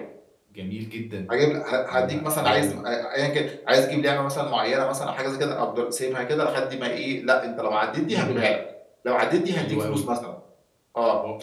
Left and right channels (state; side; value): identical; both; correlation 1.00